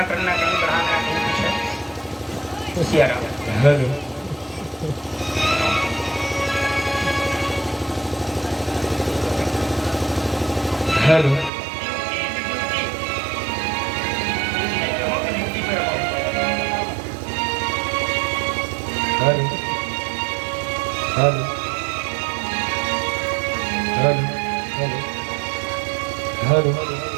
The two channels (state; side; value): drops out; left; at 11.5 s